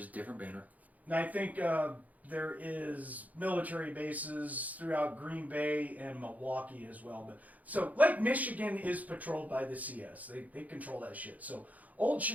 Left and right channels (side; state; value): left; late; 0.077 ms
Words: different banner. And I think there is military bases throughout Green Bay and Milwaukee as well. But so Lake Michigan is patrolled by the CS. They control that shit. So Old